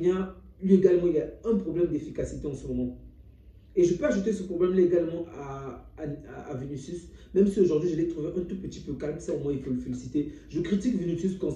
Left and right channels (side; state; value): both; identical; correlation 1.00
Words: lui également, il a un problème d'efficacité en ce moment. Et je peux ajouter ce problème-là également à Vinicius, même si aujourd'hui je l'ai trouvé un tout petit peu calme, ça au moins il faut le féliciter. Je critique Vinicius